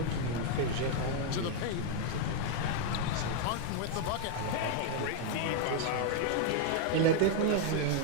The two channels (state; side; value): different; both; correlation 0.00